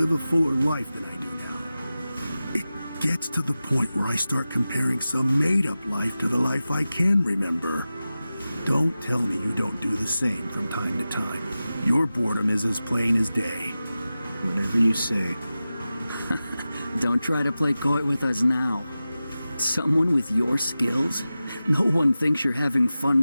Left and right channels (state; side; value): inverted; both; correlation -0.95